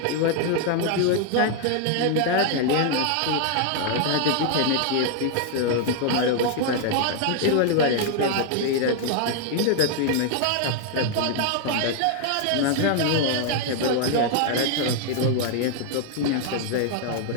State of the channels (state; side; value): different; both; correlation 0.00